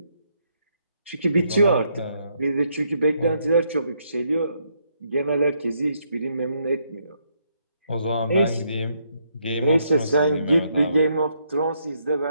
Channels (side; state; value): both; inverted; correlation -0.75